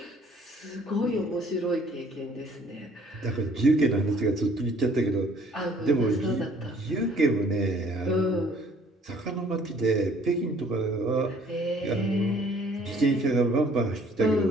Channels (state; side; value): normal; both; correlation 0.58